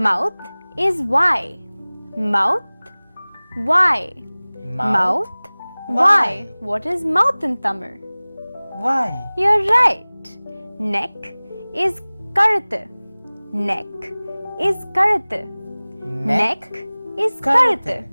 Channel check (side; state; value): both; inverted; correlation -1.00